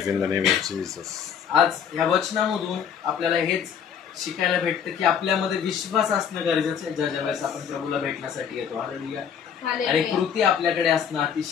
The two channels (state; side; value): quieter; right; 7.9 dB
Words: in the name of Jesus. आज ह्या वचनामधून आपल्याला हेच शिकायला भेटतं की आपल्यामध्ये विश्वास असणं गरजेचं आहे ज्या ज्या वेळेस आपण प्रभूला भेटण्यासाठी येतो. हालेलुया. आणि कृती आपल्याकडे असणं